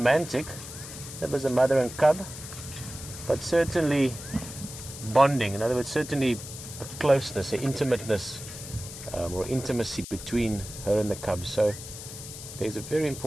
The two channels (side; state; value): left; noise; hiss, 12 dB below the sound